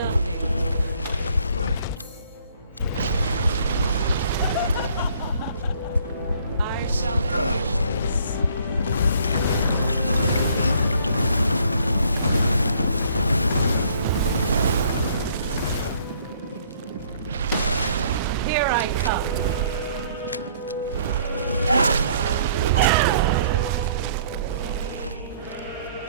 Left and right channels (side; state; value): both; inverted; correlation -0.61